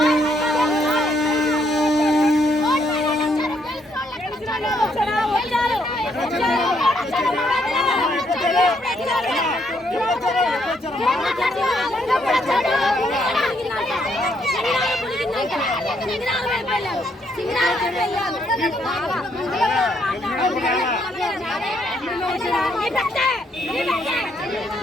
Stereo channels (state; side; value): normal; both; correlation 0.72